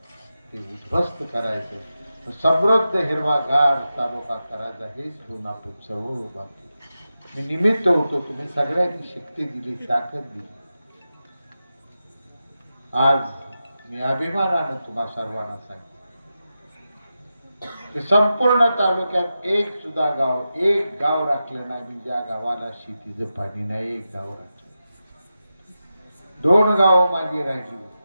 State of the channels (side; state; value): both; inverted; correlation -0.91